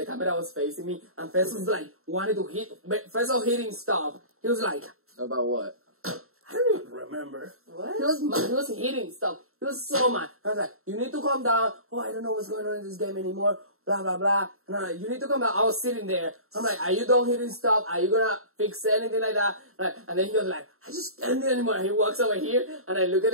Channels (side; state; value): left; late; 0.62 ms